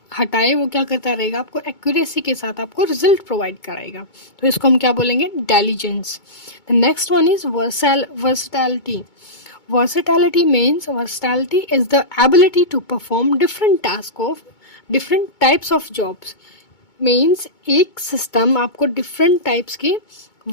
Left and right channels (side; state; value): right; late; 2.2 ms